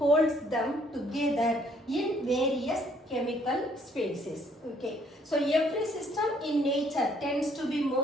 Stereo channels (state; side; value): normal; both; correlation 0.64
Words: them together in various chemical spaces. Okay, so every system in nature tends to be